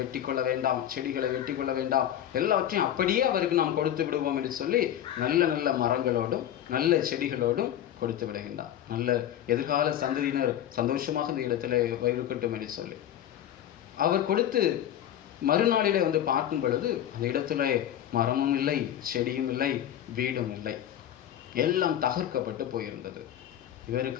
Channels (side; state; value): right; quieter; 11.1 dB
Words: வெட்டி கொள்ள வேண்டாம், செடிகளை வெட்டி கொள்ள வேண்டாம், எல்லாவற்றையும் அப்படியே அவருக்கு நாம் கொடுத்து விடுவோம் என்று சொல்லி நல்ல நல்ல மரங்களோடும் நல்ல செடிகளோடும் கொடுத்து விடுகின்றார். நல்ல எதிர்கால சந்ததியினர் சந்தோஷமாக இந்த இடத்துல இருக்கட்டும் என்று சொல்லி அவர் கொடுத்து மறுநாளிலே வந்து பார்க்கும் பொழுது அந்த இடத்துல மரமும் இல்லை, செடியும் இல்லை, வீடும் இல்லை, எல்லாம் தகர்க்கப்பட்டு போயிருந்தது.